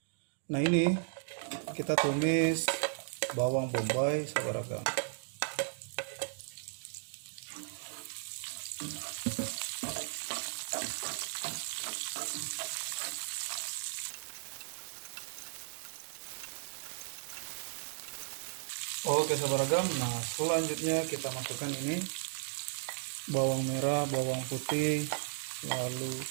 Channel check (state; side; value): silent; left; digital silence